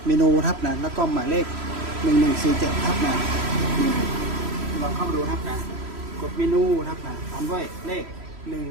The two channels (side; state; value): left; late; 3.0 ms